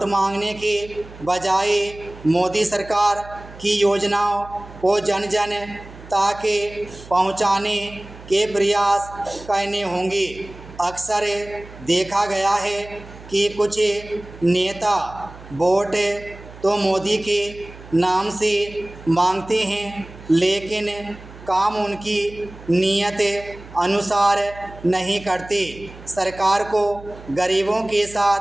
मांगने के बजाय मोदी सरकार की योजनाओं को जन जन तक पहुंचाने के प्रयास करने होंगे। अक्सर देखा गया है कि कुछ नेता वोट तो मोदी के नाम से मांगते हैं, लेकिन काम उनकी नीयत अनुसार नहीं करते। सरकार को गरीबों के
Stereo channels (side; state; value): right; noise; hum, 18 dB below the sound